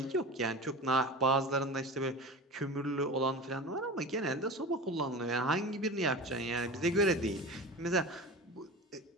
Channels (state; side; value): normal; both; correlation 0.32